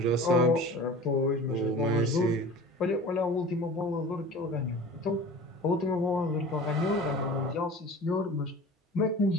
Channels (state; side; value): normal; both; correlation 0.39